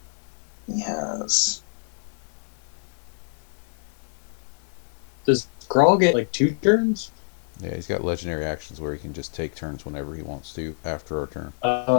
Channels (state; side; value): silent; right; digital silence